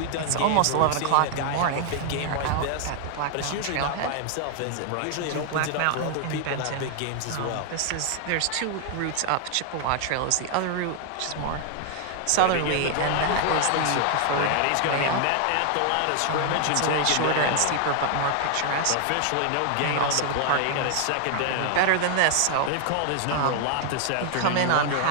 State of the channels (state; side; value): different; both; correlation 0.00